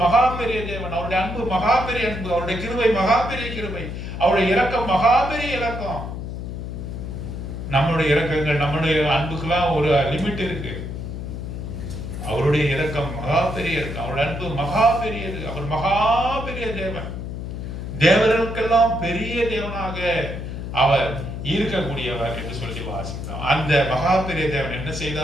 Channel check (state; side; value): noise; left; hum, 7 dB below the sound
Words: மகா பெரிய தேவன். அவருடைய அன்பு மகா பெரிய அன்பு, அவருடைய கிருபை மகா பெரிய கிருபை, அவருடைய இரக்கம் மகா பெரிய இரக்கம். நம்மளுடைய இரக்கங்கள், நம்மளுடைய அன்புக்கெல்லாம் ஒரு லிமிட் இருக்கு. அவருடைய இரக்கம் மகா பெரிய இருக்கு, அவருடைய அன்பு மகா பெரியது. அவர் மகா பெரிய தேவன், தேவர்களுக்கெல்லாம் பெரிய தேவனாக அவர் இருக்கக்கூடியவர் என்று சொல்லி வாசித்தோம். அந்த மகா பெரிய தேவன் என்ன